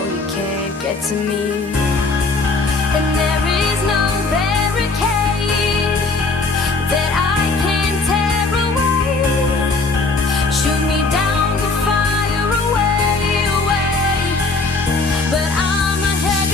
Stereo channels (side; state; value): right; quieter; 3.7 dB